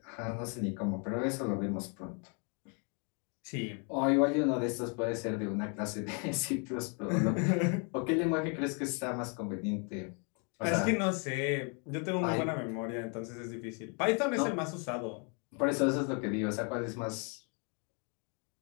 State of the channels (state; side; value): quieter; right; 37.4 dB